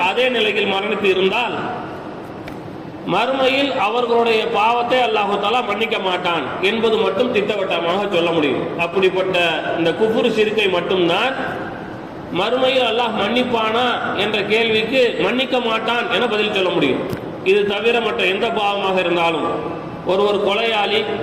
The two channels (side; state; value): both; identical; correlation 1.00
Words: அதே நிலையில் மரணித்து இருந்தால் மறுமையில் அவர்களுடைய பாவத்தை அல்லாஹு தஆலா மன்னிக்க மாட்டான் என்பது மட்டும் திட்டவட்டமாக சொல்ல முடியும். அப்படிப்பட்ட இந்த குஃபுர் ஷிர்கை மட்டும்தான் மறுமையில் அல்லாஹ் மன்னிப்பானா என்ற கேள்விக்கு மன்னிக்க மாட்டான் என பதில் சொல்ல முடியும். இது தவிர மற்ற எந்த பாவமாக இருந்தாலும், ஒருவர் கொலையாளி,